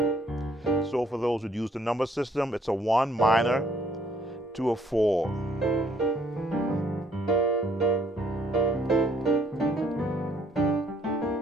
So for those who use the number system, it's a 1 minor to a 4.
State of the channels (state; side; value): normal; both; correlation 0.65